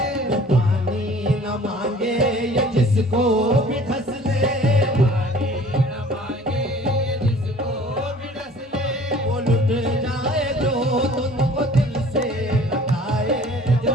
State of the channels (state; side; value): normal; both; correlation 0.50